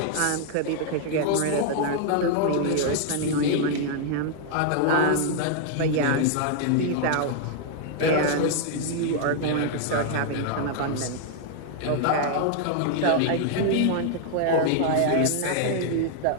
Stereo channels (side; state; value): both; different; correlation 0.00